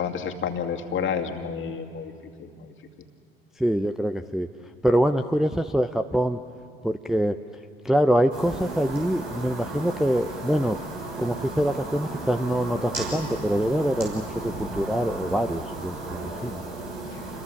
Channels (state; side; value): normal; both; correlation 0.84